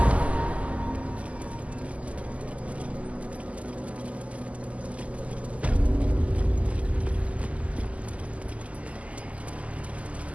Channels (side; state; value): left; late; 0.067 ms